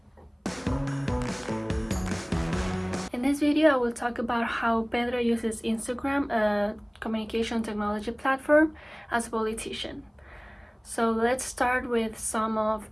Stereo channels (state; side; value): identical; both; correlation 1.00